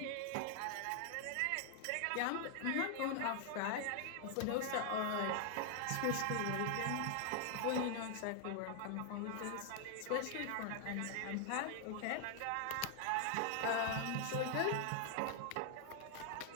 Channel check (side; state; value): both; different; correlation 0.00